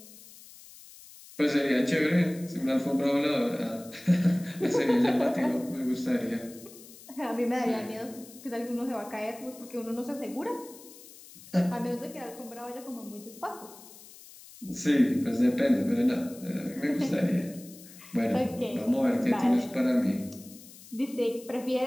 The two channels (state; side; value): noise; left; hiss, 19 dB below the sound